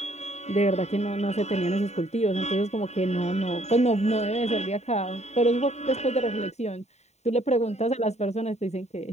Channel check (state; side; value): late; right; 0.32 ms